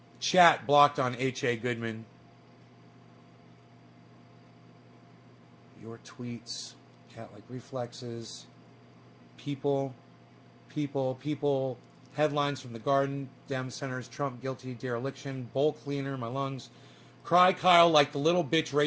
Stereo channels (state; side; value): identical; both; correlation 1.00